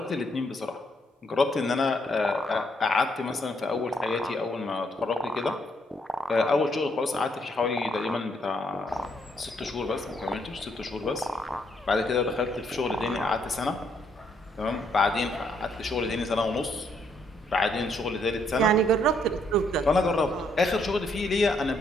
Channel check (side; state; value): both; normal; correlation 0.72